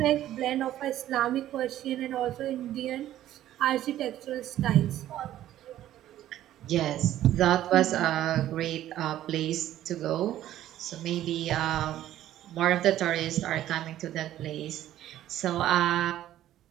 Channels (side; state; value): left; quieter; 12.9 dB